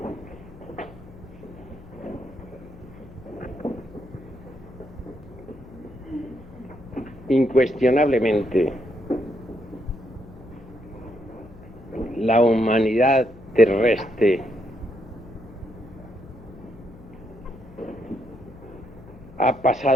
Incuestionablemente, la humanidad terrestre ha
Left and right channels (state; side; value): noise; left; hum, 20 dB below the sound